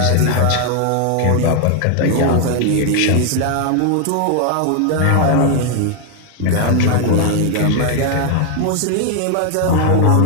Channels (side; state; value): both; different; correlation 0.00